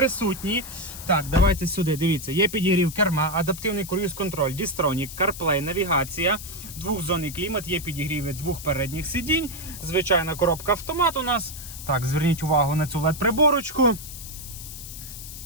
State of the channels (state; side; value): noise; left; hiss, 12 dB below the sound